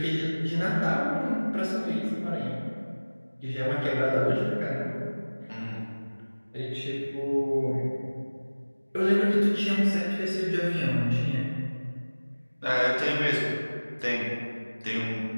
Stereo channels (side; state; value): both; inverted; correlation -1.00